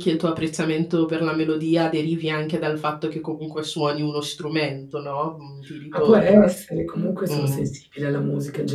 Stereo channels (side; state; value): both; identical; correlation 1.00